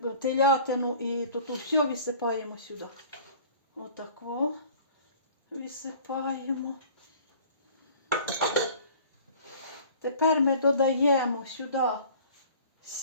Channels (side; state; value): both; inverted; correlation -0.48